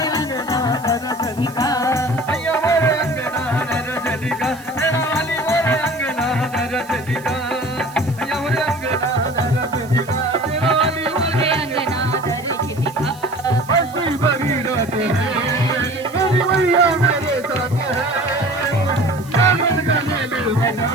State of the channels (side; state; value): right; noise; hiss, 22 dB below the sound